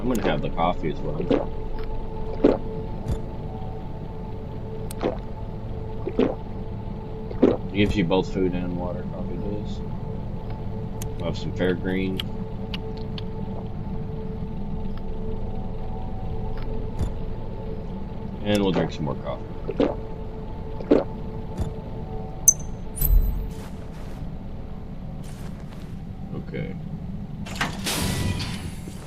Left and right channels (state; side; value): identical; both; correlation 1.00